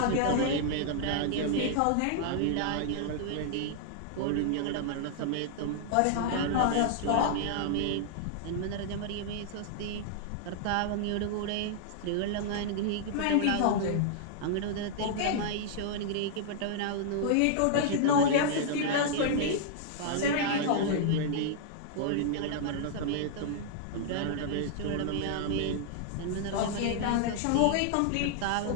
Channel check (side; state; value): both; different; correlation -0.01